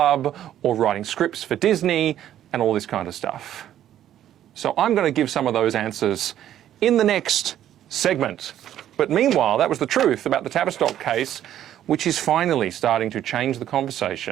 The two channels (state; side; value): quieter; left; 11.5 dB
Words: or writing scripts for Disney, and all this kind of stuff. So I'm going to give some of those answers in the next segment. But meanwhile, that was the truth about the Travistock case, which is finally starting to change the